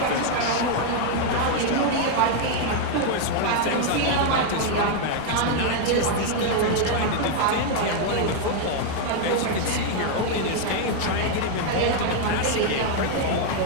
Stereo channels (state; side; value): different; both; correlation 0.00